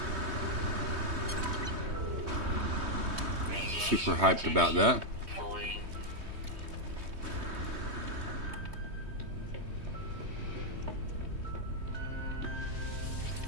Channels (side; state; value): left; late; 3.2 ms